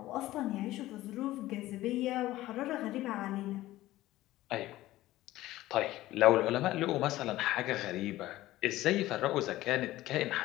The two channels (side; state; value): right; quieter; 16.2 dB